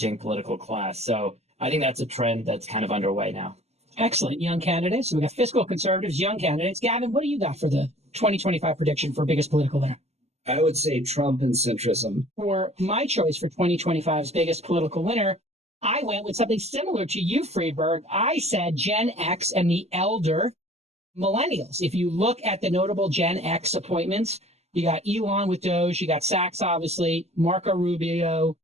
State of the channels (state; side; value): late; left; 0.31 ms